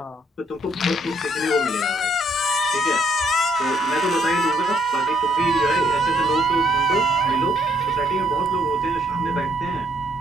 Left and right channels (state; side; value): normal; both; correlation 0.69